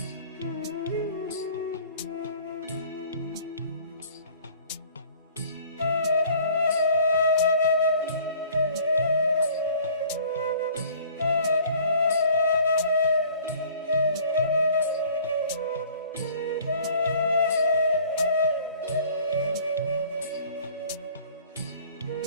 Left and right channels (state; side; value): inverted; both; correlation -0.52